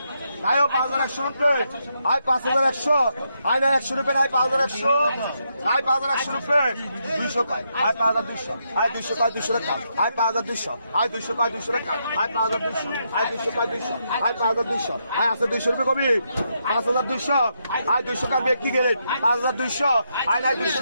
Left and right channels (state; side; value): inverted; both; correlation -0.80